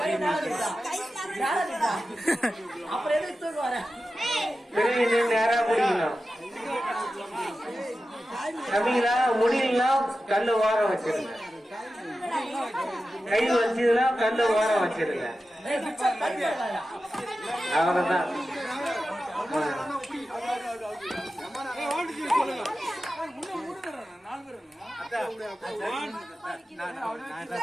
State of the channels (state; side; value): normal; both; correlation 0.93